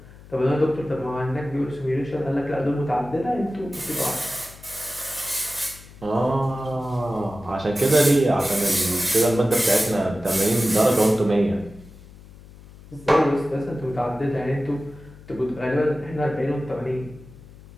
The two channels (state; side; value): noise; left; hum, 20 dB below the sound